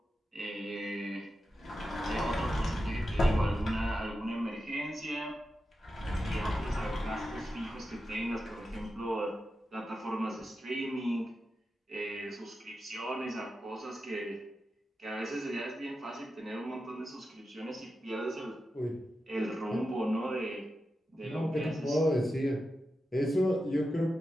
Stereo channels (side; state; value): both; normal; correlation 0.90